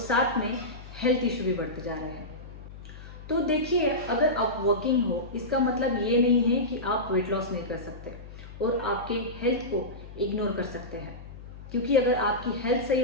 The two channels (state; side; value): noise; left; hum, 15 dB below the sound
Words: में हेल्थ इशू भी बढ़ते जा रहे हैं। तो देखिए, अगर आप वर्किंग हो, इसका मतलब ये नहीं है कि आप वेट लॉस नहीं कर सकते और आपके हेल्थ को इग्नोर कर सकते हैं, क्योंकि अगर आपकी हेल्थ सही